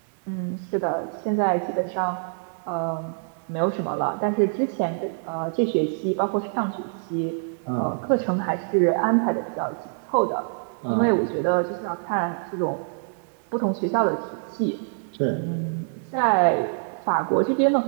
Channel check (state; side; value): silent; left; 62 dB below the other